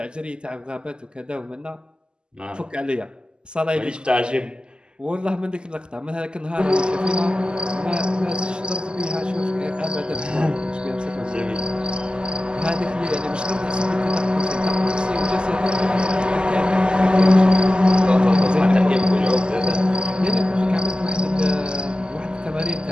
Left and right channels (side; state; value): left; late; 0.048 ms